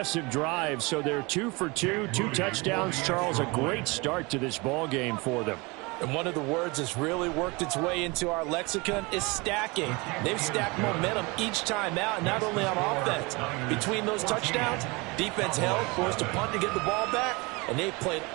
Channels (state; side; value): quieter; left; 26.2 dB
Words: drive, so they're 2 for 2, 2 touchdowns. Charles, a great start to this ball game for them. And one of the words that's really worked its way into our lexicon is stacking. They've stacked momentum each time out, not only on offense. Between those touchdowns, defense held, forced a punt to get the ball back, and they played